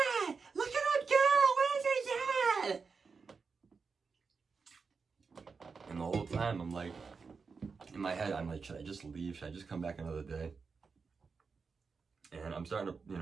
Look at that girl. What is he doing? And the whole time I'm like, in my head, I'm like, should I just leave? Should I just come back another day? And I'm starting to, you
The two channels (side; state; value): left; quieter; 5.0 dB